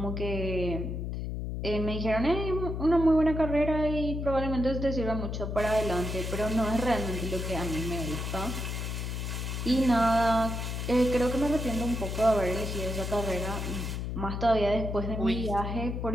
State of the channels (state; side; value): noise; left; hum, 3 dB below the sound